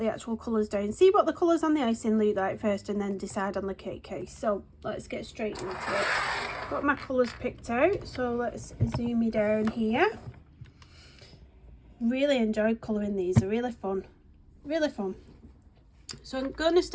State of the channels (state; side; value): identical; both; correlation 1.00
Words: actual colours down. See what the colours on the icing look like first and then decide on the cake case. So let's get straight into it. Got my colours picked out, so let's zoom me down here. Really enjoyed colouring these, they're really fun. Really fun. So I'm going to